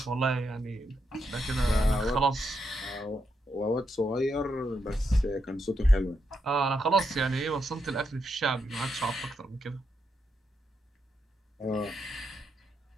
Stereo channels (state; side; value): normal; both; correlation 0.82